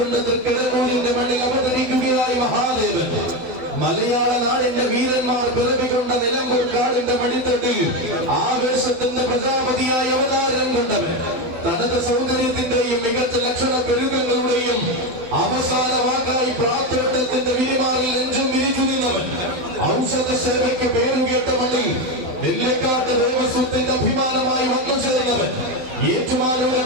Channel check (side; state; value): left; late; 12 ms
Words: തൃക്കടങ്ങൂരിന്റെ മണ്ണിൽ അവതരിക്കുകയായി മഹാദേവൻ. മലയാള നാടിന്റെ വീരന്മാർ പിറവികൊണ്ട നിലമ്പൂർ കാടിന്റെ മടിത്തട്ടിൽ ആവേശത്തിന്റെ പ്രജാപതിയായി അവതാരം കൊണ്ടവൻ. തനത് സൗന്ദര്യത്തിന്റെയും മികച്ച ലക്ഷണ പെരുകങ്ങളുടെയും അവസാന വാക്കായി പ്രാർത്ഥനത്തിന്റെ വിരിമാറിൽ നെഞ്ചും വിരിച്ചിരുന്നവൻ. ഔഷധ സേവയ്ക്ക് പേരുകേട്ട മണ്ണിൽ നെല്ലിക്കാട്ട് ദേവസ്വത്തിന്റെ അഭിമാനമായി വന്നു ചേർന്നവൻ.